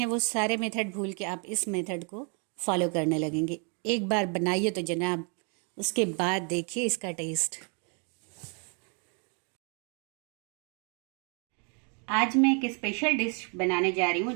वो सारे मेथड भूल के आप इस मेथड को फॉलो करने लगेंगे। एक बार बनाइए तो जनाब, उसके बाद देखिए इसका टेस्ट। आज मैं एक स्पेशल डिश बनाने जा रही हूँ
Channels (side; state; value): left; quieter; 37.8 dB